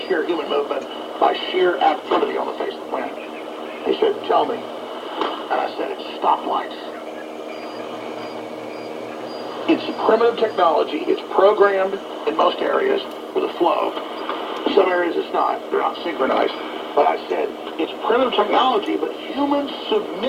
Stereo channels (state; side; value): identical; both; correlation 1.00